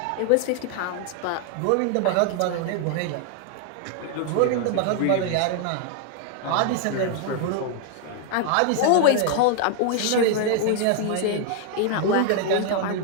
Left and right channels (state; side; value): different; both; correlation 0.00